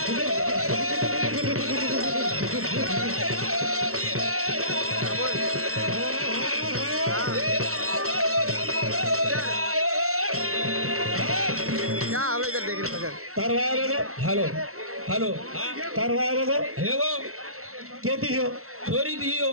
हेलो हेलो तरवागो हेगो केती हो छोरी दी हो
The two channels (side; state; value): left; late; 0.63 ms